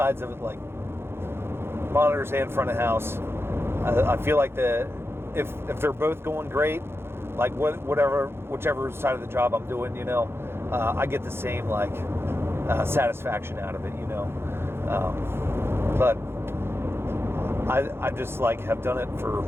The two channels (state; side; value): late; left; 0.11 ms